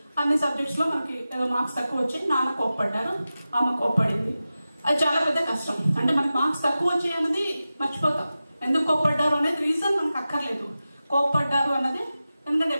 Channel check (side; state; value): both; inverted; correlation -0.94